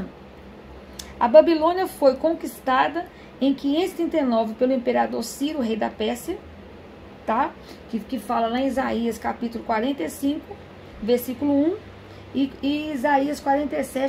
A Babilônia foi conquistada em 539 pelo imperador Ciro, rei da Pérsia, tá? Que fala lá em Isaías capítulo 45, versículo 1 e Isaías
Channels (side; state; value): both; identical; correlation 1.00